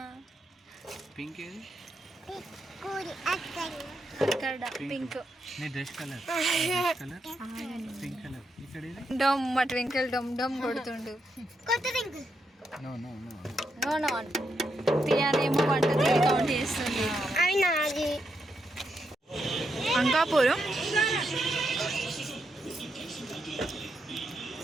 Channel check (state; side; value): normal; both; correlation 0.82